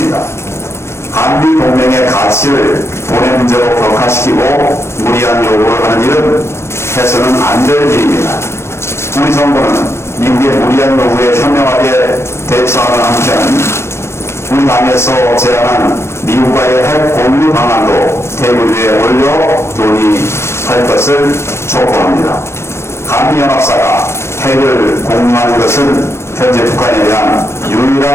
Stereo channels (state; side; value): late; right; 0.13 ms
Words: 한미 동맹의 가치를 돈의 문제로 격화시키고 무리한 요구를 하는 일은 해서는 안 될 일입니다. 우리 정부는 미국의 무리한 요구에 현명하게 대처하는 한편 우리 당에서 제안한 미국과의 핵 공유 방안도 테이블 위에 올려 논의할 것을 촉구합니다. 한미연합사가 핵을 공유하는 것은 현재 북한에 대한